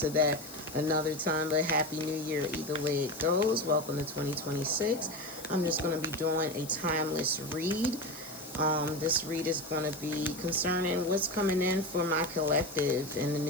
that another time. But Happy New Year either way it goes. Welcome to 2026. I'm just going to be doing a timeless read. This read is going to be concerning what's coming in for my collective in the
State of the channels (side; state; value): left; noise; hiss, 15 dB below the sound